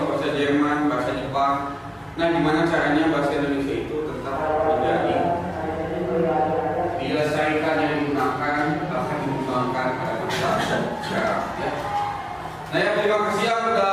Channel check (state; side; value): identical; both; correlation 1.00